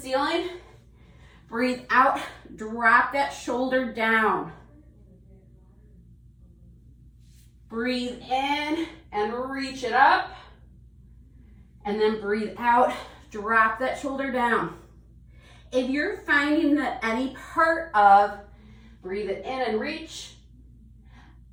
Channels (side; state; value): both; identical; correlation 1.00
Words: Breathe out, drop that shoulder down. Breathe in and reach it up. And then breathe out, drop that shoulder down. If you're finding that any part of breathe it in and reach